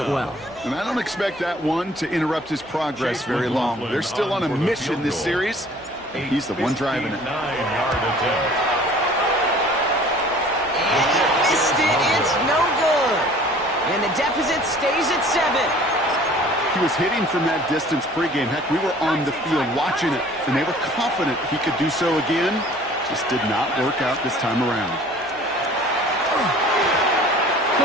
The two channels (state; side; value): noise; right; hum, 28 dB below the sound